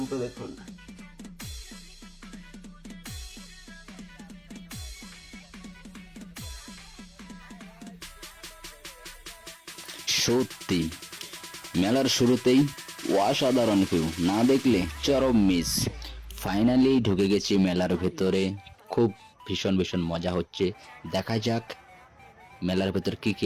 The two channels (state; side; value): identical; both; correlation 1.00